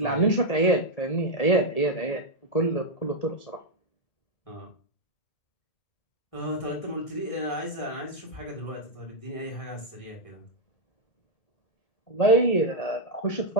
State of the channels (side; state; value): right; late; 1.6 ms